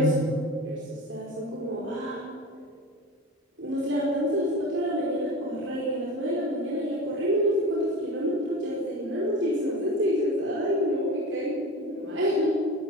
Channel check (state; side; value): normal; both; correlation 0.31